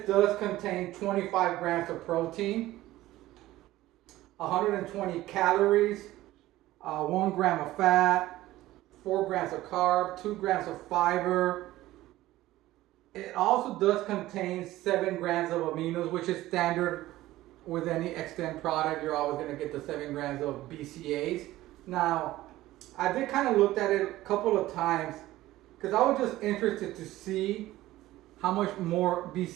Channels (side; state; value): left; quieter; 16.2 dB